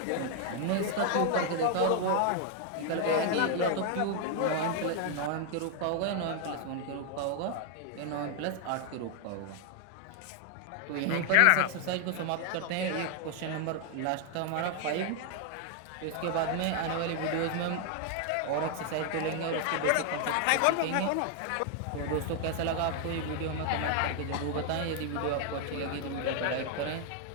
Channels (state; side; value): different; both; correlation 0.00